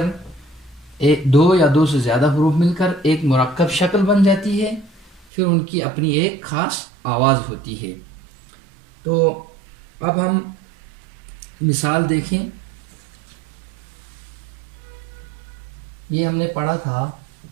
2 یا 2 سے زیادہ حروف مل کر ایک مرکب شکل بن جاتی ہے، پھر ان کی اپنی ایک خاص آواز ہوتی ہے۔ تو اب ہم مثال دیکھیں۔ یہ ہم نے پڑھا تھا،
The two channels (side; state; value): left; drops out; at 5.2 s